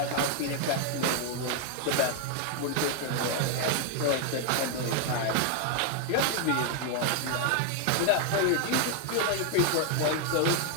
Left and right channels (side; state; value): both; different; correlation 0.00